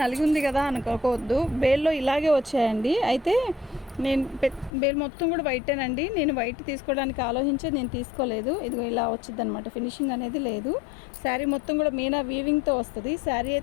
నలిగి ఉంది కదా అనుకోవద్దు, బేల్లో ఇలాగే వచ్చాయండి. అయితే నేను బేల్ మొత్తం కూడా వైటేనండి. నేను వైట్ తీసుకోవడానికి ఆలోచించి నేను తీసుకోలేదు. ఇదిగో ఇలా వచ్చింది అనమాట, ఫినిషింగ్ అనేది లేదు. శారీ మొత్తం కూడా మీనా వీవింగ్తో వస్తుంది. శారీ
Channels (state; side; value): drops out; right; at 4.7 s